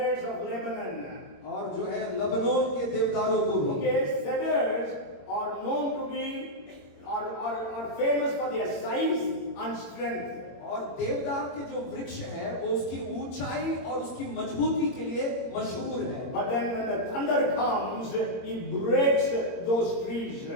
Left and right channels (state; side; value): late; right; 22 ms